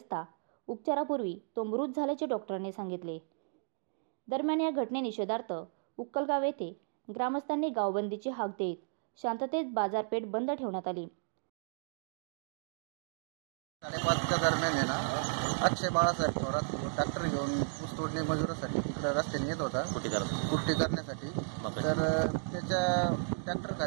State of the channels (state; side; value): silent; left; digital silence